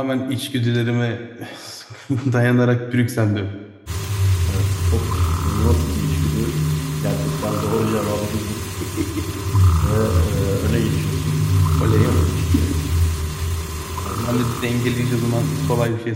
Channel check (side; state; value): both; identical; correlation 1.00